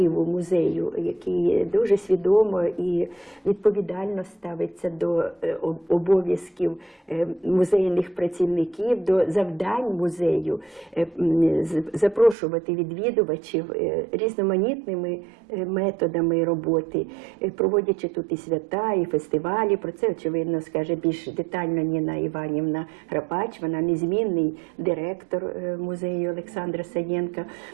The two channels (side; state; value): left; drops out; at 12.4 s